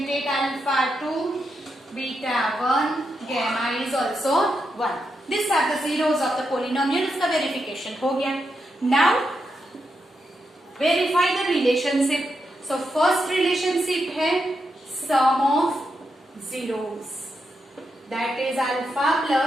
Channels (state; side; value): normal; both; correlation 0.84